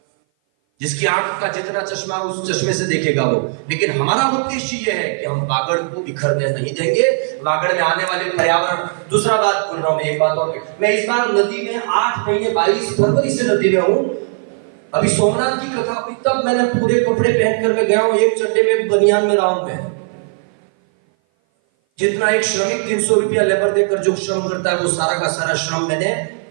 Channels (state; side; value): silent; left; 57 dB below the other